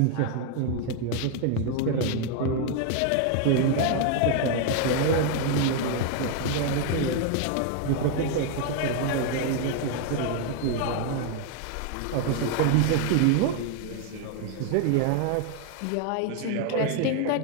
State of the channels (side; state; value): both; different; correlation 0.00